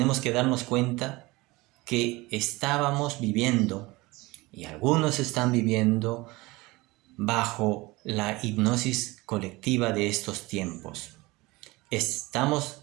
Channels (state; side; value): quieter; left; 21.8 dB